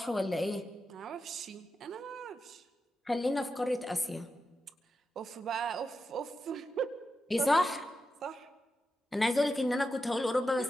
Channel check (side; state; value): both; normal; correlation 0.89